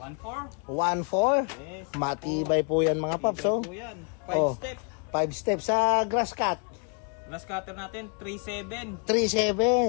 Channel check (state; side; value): quieter; right; 39.5 dB